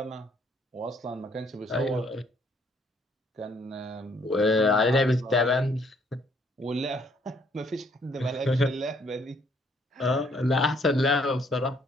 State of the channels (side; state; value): both; normal; correlation 0.66